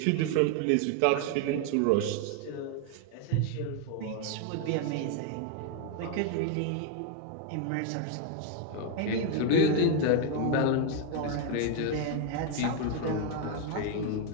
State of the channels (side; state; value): both; different; correlation 0.01